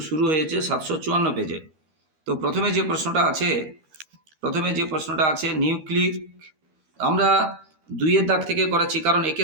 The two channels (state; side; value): late; left; 13 ms